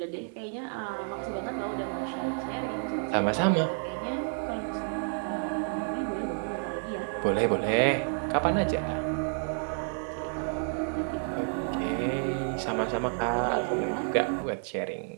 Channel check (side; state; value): left; silent; 57 dB below the other